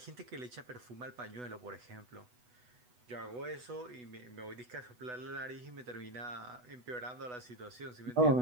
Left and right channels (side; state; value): left; late; 8.1 ms